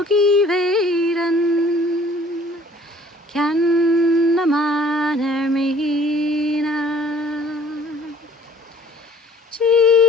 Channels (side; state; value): both; normal; correlation 0.54